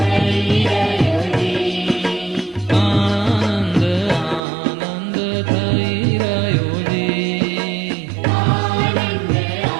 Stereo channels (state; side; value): drops out; left; at 4.4 s